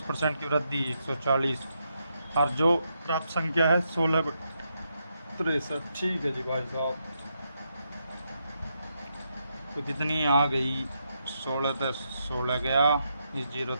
की वृद्धि 140, और जो प्राप्त संख्या है 16/63, ठीक है जी भाई साहब। तो कितनी आ गई 16 तो 16 गया, इस 0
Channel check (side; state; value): both; inverted; correlation -0.81